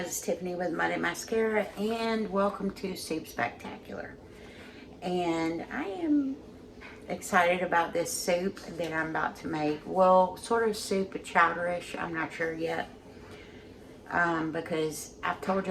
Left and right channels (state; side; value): identical; both; correlation 1.00